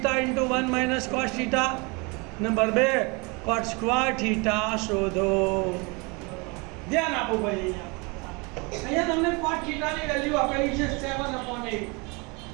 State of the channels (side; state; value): left; quieter; 28.7 dB